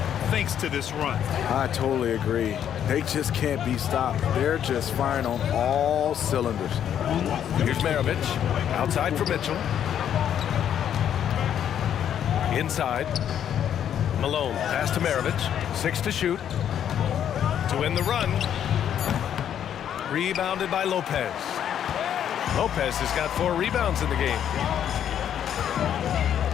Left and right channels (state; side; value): quieter; right; 9.6 dB